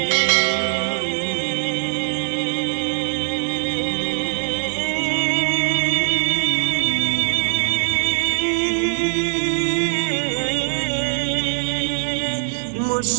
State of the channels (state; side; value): silent; left; digital silence